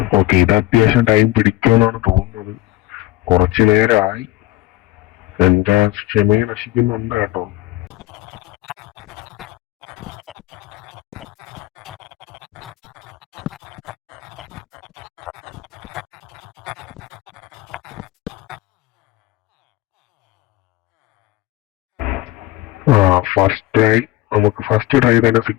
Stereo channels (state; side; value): quieter; right; 17.2 dB